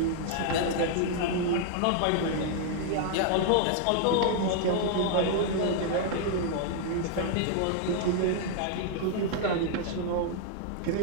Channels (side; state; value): both; different; correlation 0.00